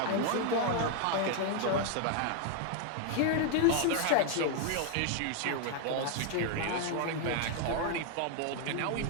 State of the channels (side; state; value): both; different; correlation 0.00